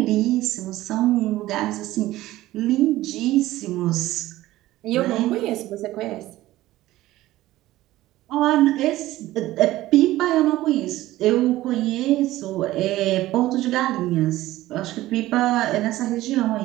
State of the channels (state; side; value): quieter; left; 16.2 dB